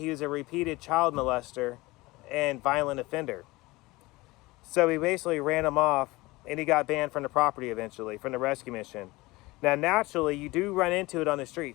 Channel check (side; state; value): right; quieter; 21.1 dB